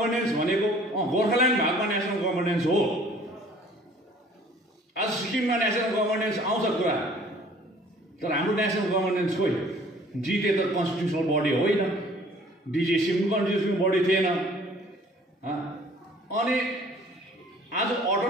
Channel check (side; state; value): both; normal; correlation 0.53